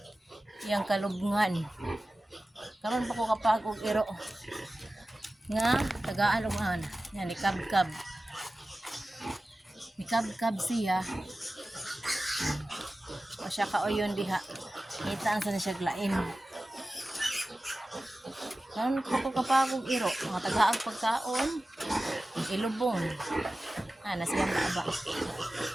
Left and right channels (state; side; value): normal; both; correlation 0.95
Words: iyang kalubngan. Karon pa ko kapag og iro nga tagaan og ana. Yan ni kabkab. Ni kabkab siya. O siya kaoyon diha. Ngita sa siya glain. Karon pa ko kapag og iro nga tagaag pagkaon ilubong. Ana siyang baaba.